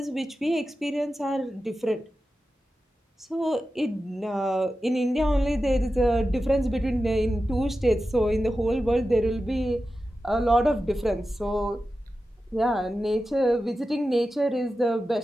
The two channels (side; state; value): both; normal; correlation 0.92